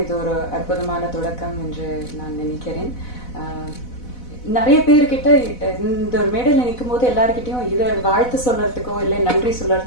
இது ஒரு அற்புதமான தொடக்கம் என்று நான் நினைக்கிறேன். நிறைய பேர்கிட்ட இந்த ஒரு மேடையில் நிற்கும் போது எல்லாருக்கிட்டையும் இதை வாழ்த்து சொல்றதுக்கோ இல்லை நன்றி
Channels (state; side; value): late; right; 4.0 ms